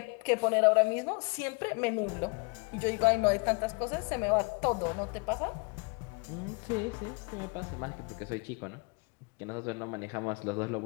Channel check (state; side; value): quieter; right; 32.0 dB